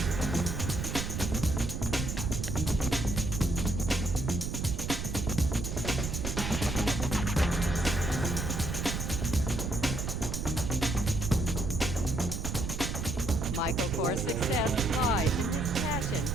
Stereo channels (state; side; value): noise; right; rumble, 3 dB below the sound